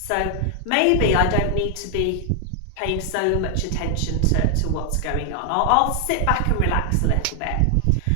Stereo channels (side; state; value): both; different; correlation 0.00